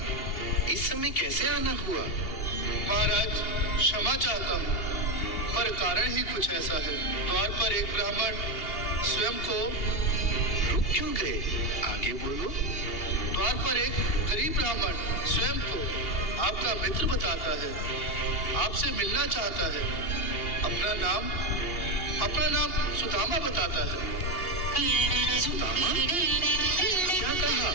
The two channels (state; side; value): late; right; 2.8 ms